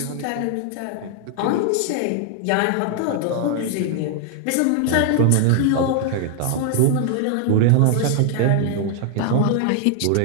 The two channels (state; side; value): different; both; correlation 0.00